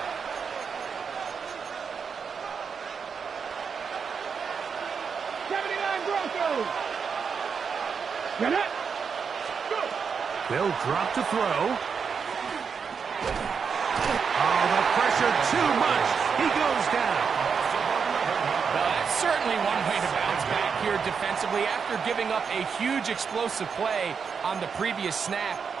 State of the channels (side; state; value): left; quieter; 6.1 dB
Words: They'll drop to throw. Oh, the pressure too much. He goes down. Well, that's certainly one way to bounce back here defensively after giving up a huge explosive play on the previous snap.